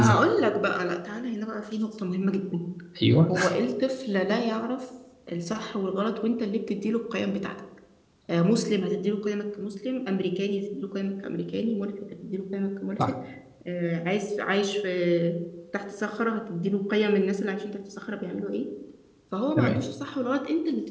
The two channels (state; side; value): identical; both; correlation 1.00